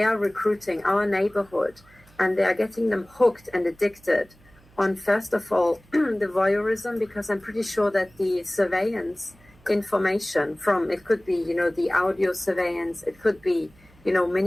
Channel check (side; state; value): right; noise; hum, 28 dB below the sound